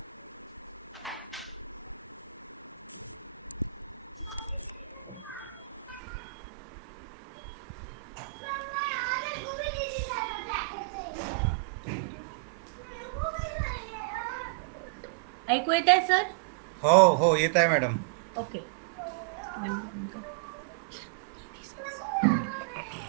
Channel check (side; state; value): left; drops out; at 6.0 s